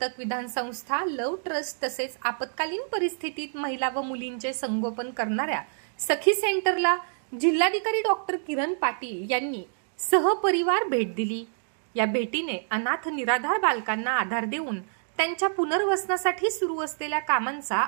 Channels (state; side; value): silent; left; digital silence